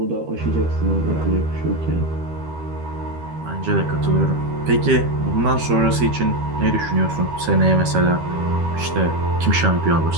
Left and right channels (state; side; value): late; left; 13 ms